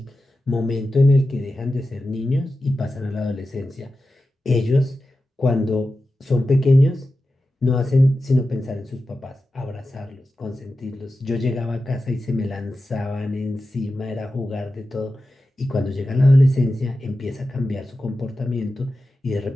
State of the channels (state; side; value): normal; both; correlation 0.92